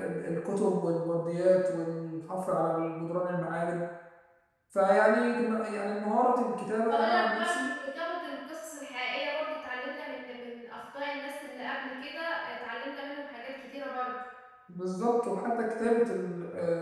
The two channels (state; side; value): identical; both; correlation 1.00